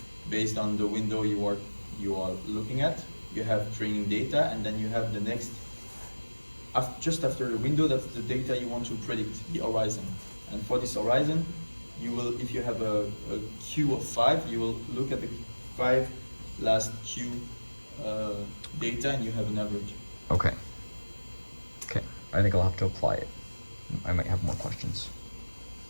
based on the window you are looking at, you have training data, and then you have the next. Just after the window, that's the data you want to predict, the horizon. And for this horizon, you will, if you have a queue of 5, you will look at the 5 last queue data, and you have an average. Okay. Okay. I think I'll have to apply it. I might have more questions.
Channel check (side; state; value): both; inverted; correlation -1.00